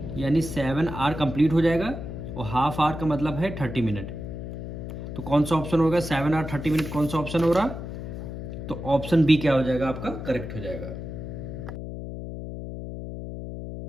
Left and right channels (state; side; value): noise; left; hum, 8 dB below the sound